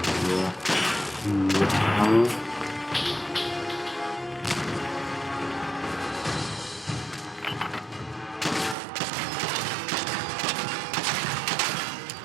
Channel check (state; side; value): drops out; left; at 8.8 s